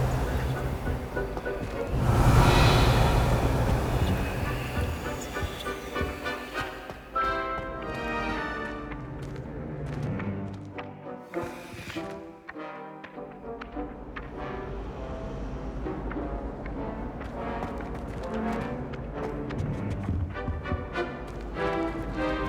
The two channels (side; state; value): both; identical; correlation 1.00